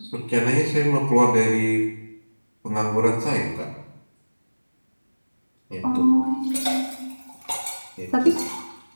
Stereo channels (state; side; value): inverted; both; correlation -1.00